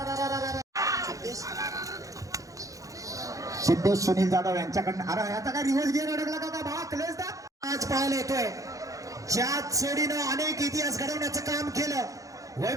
सिद्धेश सुनील जाधव यांच्याकडनं अरे याचा काय रिव्हर्स गिअर अडकला का भावा क्लेस दा आज पाहायला येतोय ज्यात सोडीनं अनेक इतिहास घडवण्याचं काम केलं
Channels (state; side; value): late; left; 0.16 ms